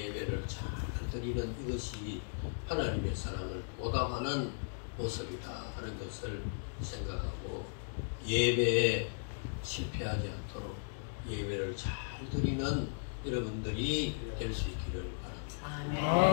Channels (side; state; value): right; silent; digital silence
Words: 잘 드리는 이것이 하나님의 사랑을 보답하는 모습이다 하는 것을 생각하고 예배에 실패하지 않도록 예배를 잘 드리는 여러분들이 될 수 있기를 바랍니다.